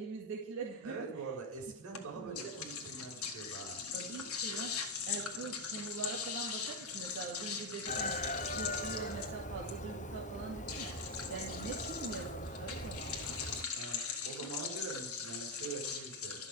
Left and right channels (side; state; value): both; normal; correlation 0.05